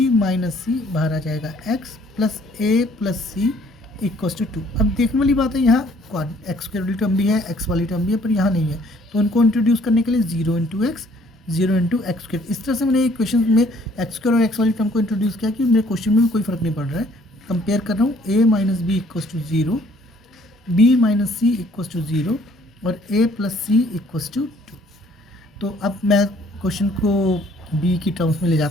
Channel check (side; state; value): both; normal; correlation 0.60